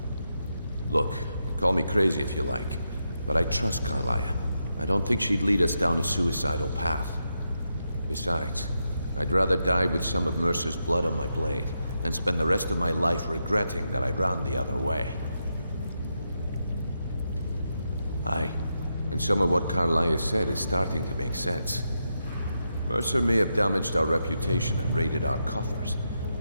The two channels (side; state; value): both; inverted; correlation -0.85